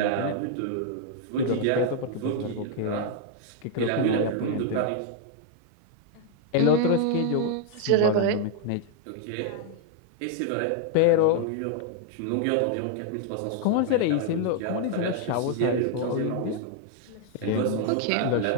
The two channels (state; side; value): different; both; correlation 0.00